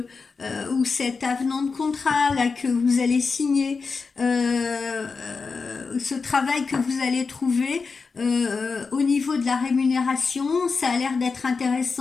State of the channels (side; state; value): right; quieter; 4.8 dB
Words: cet avenant de contrat là que vous allez signer, ce travail que vous allez trouver au niveau de la rémunération, ça a l'air d'être